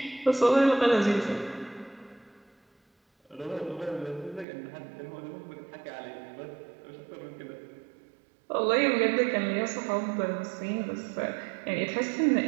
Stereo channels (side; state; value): left; drops out; at 4.5 s